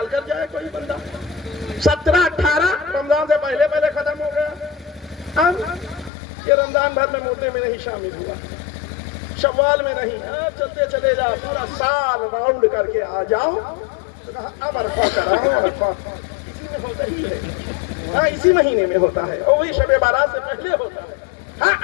کر جائے کوئی بندہ, 17-18 رمضان سے پہلے پہلے ختم ہو گیا. یہ رمضان بھر میں مردے میں نہیں شامل ہوا, شوال میں نہیں, چلتے چلے جاؤ, پورا سال راؤنڈ کر کے آ جاؤ. اب عرفہ کراؤ. عرفہ اسی میں ہوتا ہی ہے, ہاں اسی مہینے میں ہوتا ہے, اور وہی شب بارات سے پہلے ہوتا ہے. ہاں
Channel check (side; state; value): right; drops out; at 6.1 s